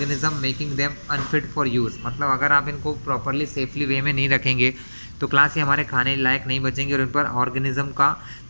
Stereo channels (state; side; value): inverted; both; correlation -1.00